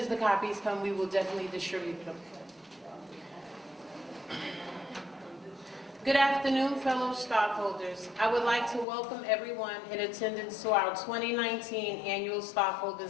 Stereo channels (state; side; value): drops out; right; at 8.8 s